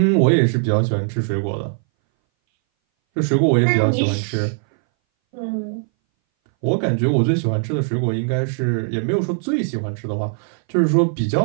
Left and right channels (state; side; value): silent; left; 61 dB below the other